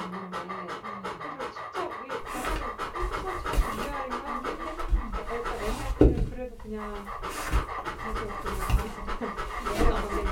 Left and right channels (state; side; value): identical; both; correlation 1.00